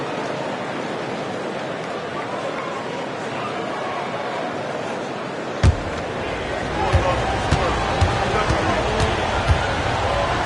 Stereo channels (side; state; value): both; identical; correlation 1.00